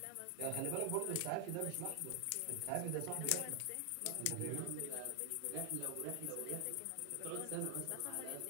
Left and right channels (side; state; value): both; different; correlation 0.00